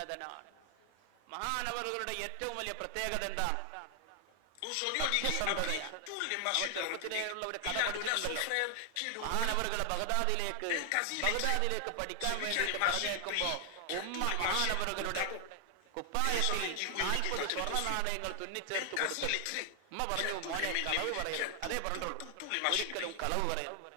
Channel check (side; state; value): both; different; correlation 0.00